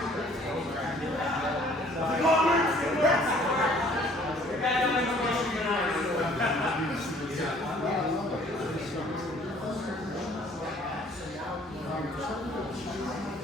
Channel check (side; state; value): both; normal; correlation 0.57